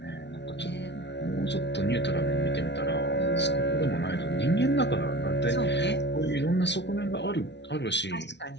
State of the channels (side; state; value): right; late; 0.51 ms